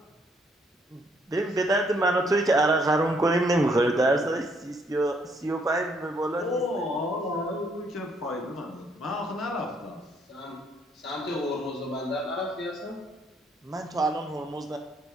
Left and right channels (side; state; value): both; normal; correlation 0.69